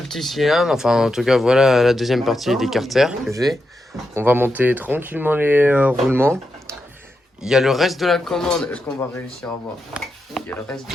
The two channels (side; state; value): both; normal; correlation 0.86